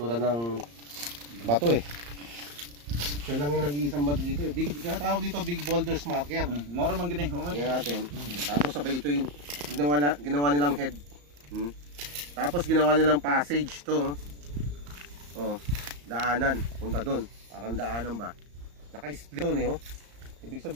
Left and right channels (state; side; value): late; left; 34 ms